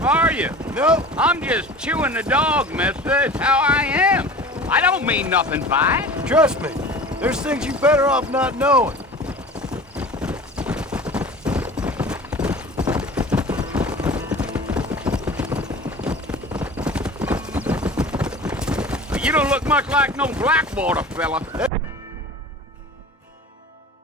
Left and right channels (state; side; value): normal; both; correlation 0.39